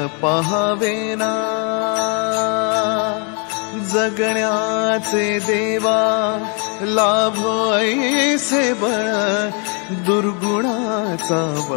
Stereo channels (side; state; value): right; quieter; 38.1 dB